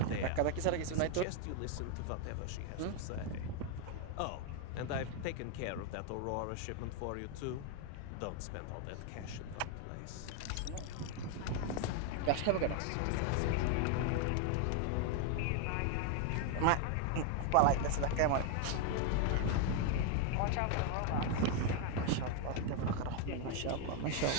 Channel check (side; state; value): both; different; correlation 0.01